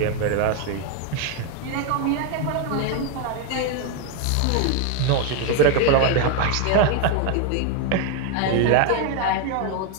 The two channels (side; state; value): both; different; correlation 0.01